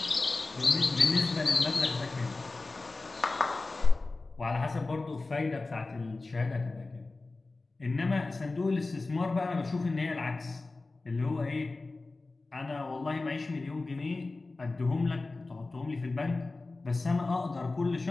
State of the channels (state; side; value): quieter; right; 3.4 dB